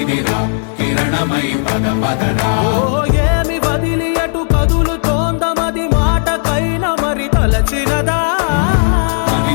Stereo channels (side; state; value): right; silent; 71 dB below the other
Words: కిరణమై పద పదరా ఓ ఏమి వదిలి అటు కదులుతోందమది మాటకైన మరి తలచినదా